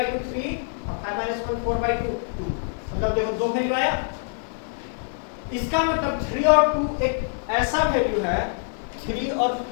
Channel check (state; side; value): silent; right; digital silence